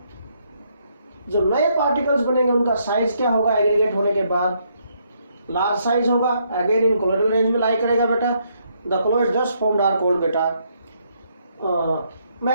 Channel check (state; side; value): inverted; both; correlation -0.73